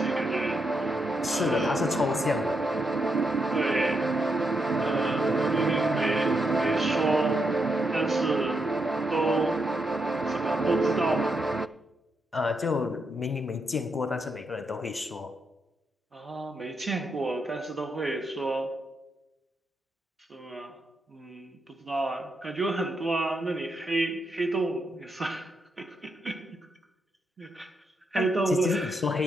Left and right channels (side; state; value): both; normal; correlation 0.81